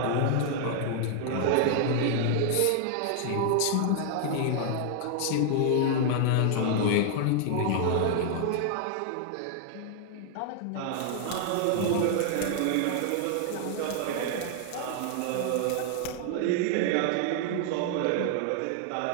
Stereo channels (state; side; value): different; both; correlation 0.00